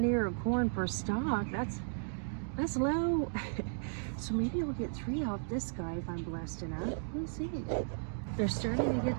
ear of corn per stalk. That's low. So maybe I'll get 3 off this guy if I'm blessed enough. We'll see. They're starting to get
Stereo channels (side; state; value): left; silent; digital silence